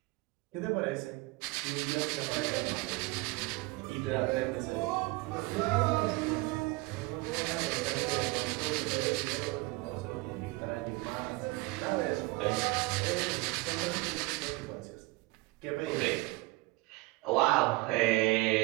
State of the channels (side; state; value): left; quieter; 22.7 dB